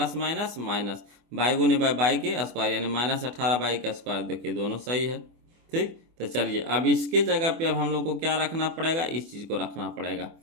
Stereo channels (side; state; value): left; late; 24 ms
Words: माइनस माइनस बाई गुने बाई के स्क्वायर, यानी -18 बाई का स्क्वायर। देखिए दोनों सही है। ठीक, तो चलिए अब इसके जगह पे अब हम लोग को क्या रखना पड़ेगा, इस चीज़ को रखना पड़ेगा।